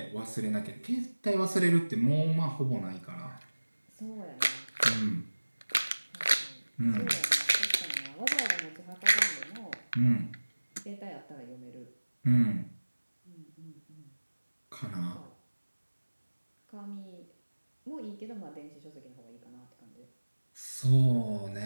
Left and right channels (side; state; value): both; inverted; correlation -1.00